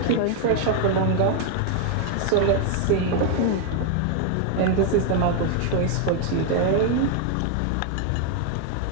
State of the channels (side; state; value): both; different; correlation 0.00